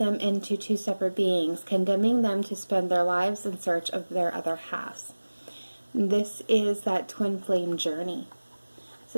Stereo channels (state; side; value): inverted; both; correlation -1.00